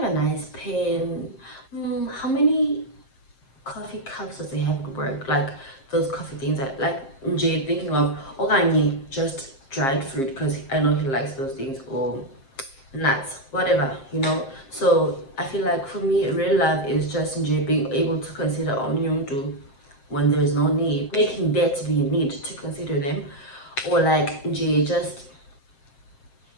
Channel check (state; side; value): late; right; 7.5 ms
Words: a nice pen? How many coffee cups does he have at work? Like those coffee things that, like, Jay thinking of organic, just dried fruit, because I know he likes those things, or nuts, whatever, you know. So I feel like for me, real love is just being able to consider omnyundu when there's no need, making there to be a need to consider them, or like just